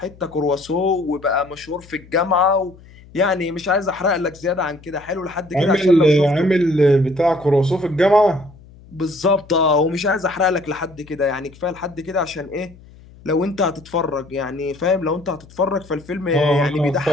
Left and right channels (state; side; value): noise; left; hum, 23 dB below the sound